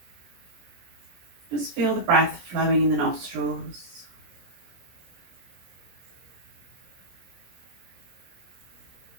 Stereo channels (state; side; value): late; left; 17 ms